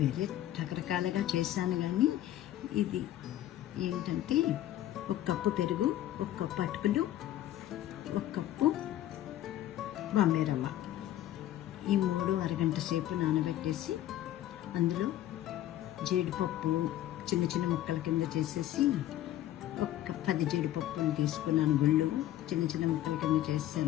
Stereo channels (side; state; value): right; quieter; 13.2 dB